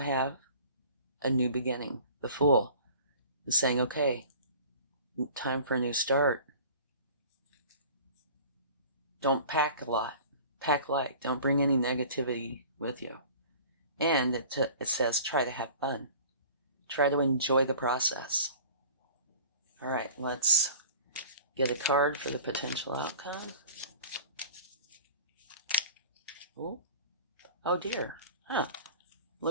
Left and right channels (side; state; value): both; inverted; correlation -0.44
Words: a new beginning. The Fool is saying, okay, time for a new start. Don't pack a lot. Pack light. Don't bring any negativity with you. And it says try to have fun. Try to enjoy the process. All right, let's get a card for the potential outcome. Oh dear.